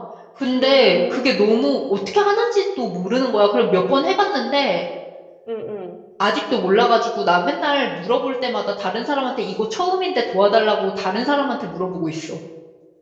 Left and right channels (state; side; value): identical; both; correlation 1.00